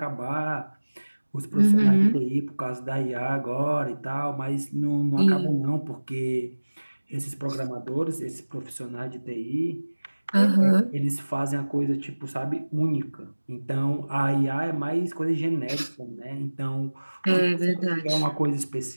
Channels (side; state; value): both; inverted; correlation -1.00